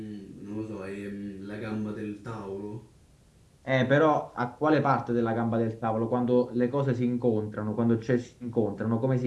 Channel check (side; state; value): both; identical; correlation 1.00